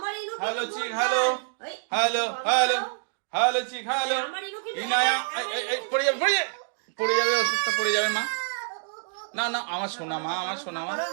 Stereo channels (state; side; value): silent; left; digital silence